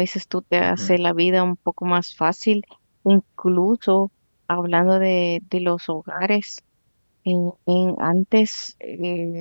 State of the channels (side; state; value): both; inverted; correlation -1.00